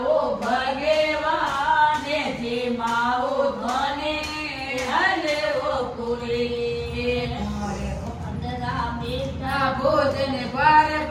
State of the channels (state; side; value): identical; both; correlation 1.00